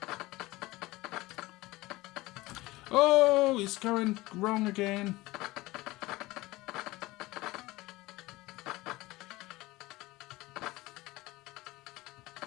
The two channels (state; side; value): quieter; right; 19.8 dB